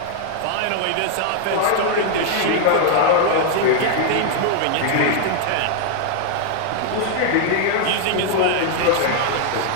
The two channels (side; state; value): both; different; correlation 0.00